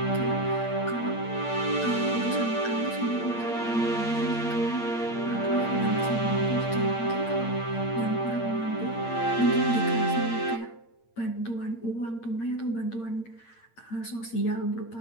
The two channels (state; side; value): late; right; 8.7 ms